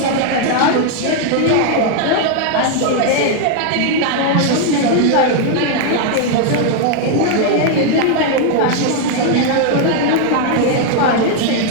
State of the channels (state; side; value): different; both; correlation 0.00